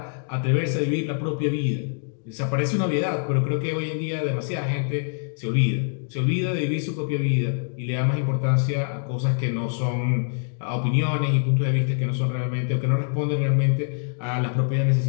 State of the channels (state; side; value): silent; right; digital silence